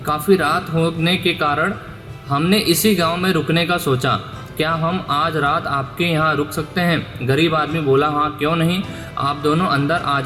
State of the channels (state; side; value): identical; both; correlation 1.00